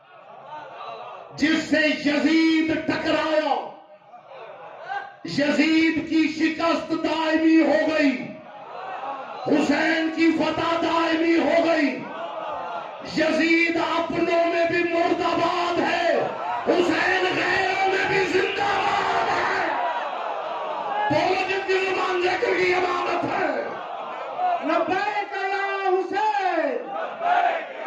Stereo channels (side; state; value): both; identical; correlation 1.00